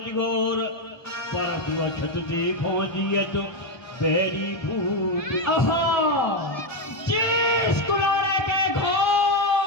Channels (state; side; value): late; right; 1.2 ms